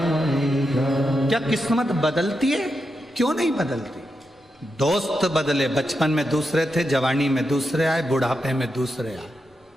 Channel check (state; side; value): normal; both; correlation 0.86